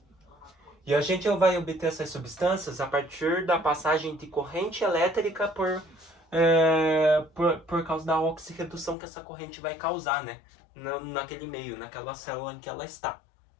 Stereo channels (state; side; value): drops out; right; at 9.0 s